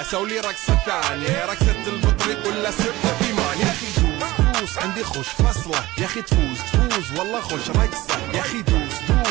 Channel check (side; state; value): left; quieter; 18.5 dB